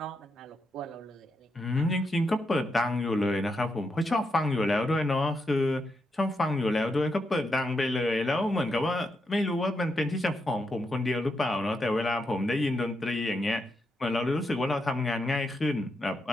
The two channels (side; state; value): both; normal; correlation 0.83